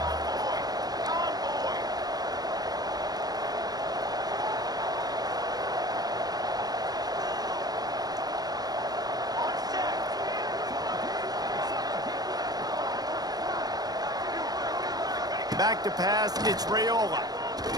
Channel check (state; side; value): late; left; 0.19 ms